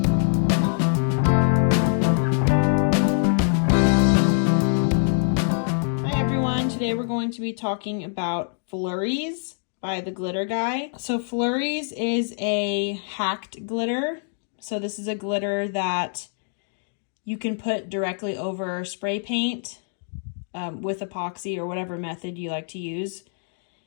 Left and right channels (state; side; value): silent; right; digital silence